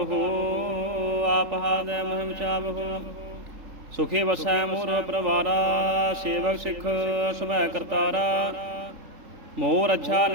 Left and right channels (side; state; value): left; late; 3.8 ms